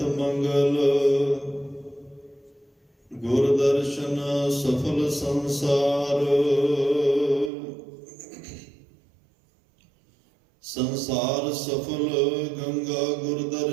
ਮੰਗਲ, ਗੁਰ ਦਰਸ਼ਨ ਸਫਲ ਸੰਸਾਰ। ਸੰਸਾਰ ਸਫਲ ਗੰਗਾ ਗੁਰ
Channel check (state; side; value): drops out; left; at 7.5 s